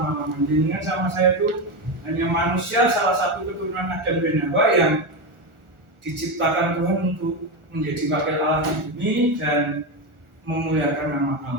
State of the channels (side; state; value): left; late; 1.4 ms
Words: Dengan sama saya itu hanya manusia, salah satu keturunan Adam dan Hawa yang diciptakan Tuhan untuk menjadi wakil Allah di bumi dan memuliakan nama